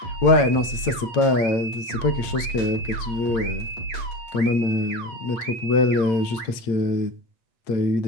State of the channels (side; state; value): right; late; 8.8 ms